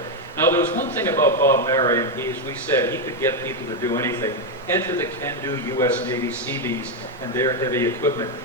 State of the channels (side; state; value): both; normal; correlation 0.04